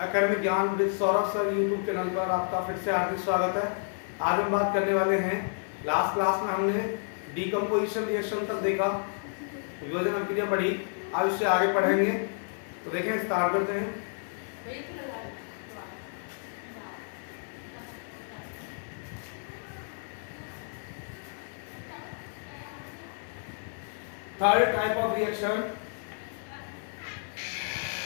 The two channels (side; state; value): right; silent; 57 dB below the other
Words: एकेडमिक ज्ञान with Saurabh sir YouTube channel पर आपका फिर से हार्दिक स्वागत है। आज हम बात करने वाले हैं, लास्ट क्लास में हमने डीकम्पोजिशन रिएक्शन तक देखा, विभाजन अभिक्रिया पढ़ी। आज उससे आगे पढ़ेंगे, तो देखें स्टार्ट करते हैं। थर्ड टाइप ऑफ रिएक्शन,